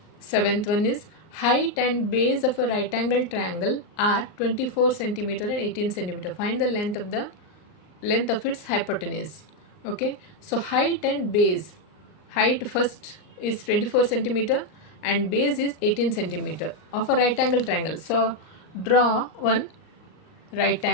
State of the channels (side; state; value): right; late; 39 ms